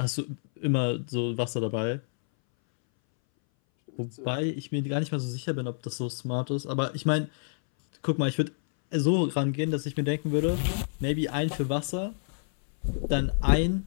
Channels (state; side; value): silent; right; 59 dB below the other